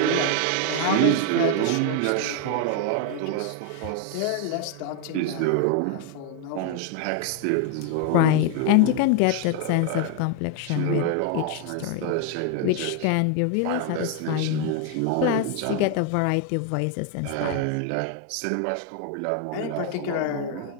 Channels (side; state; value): both; different; correlation 0.00